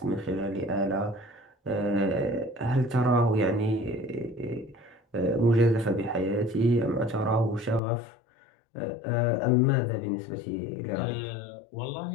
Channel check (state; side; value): drops out; right; at 7.8 s